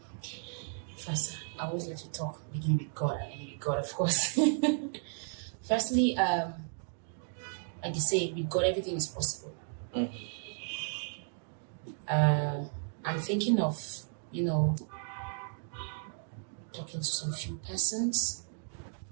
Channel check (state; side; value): silent; left; 55 dB below the other